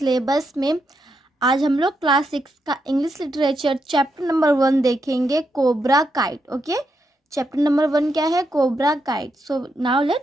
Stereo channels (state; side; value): normal; both; correlation 0.82